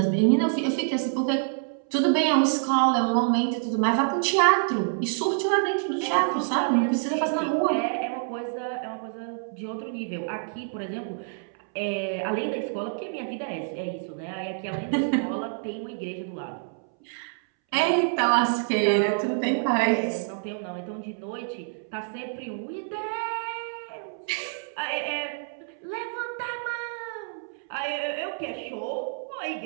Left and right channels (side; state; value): left; silent; 60 dB below the other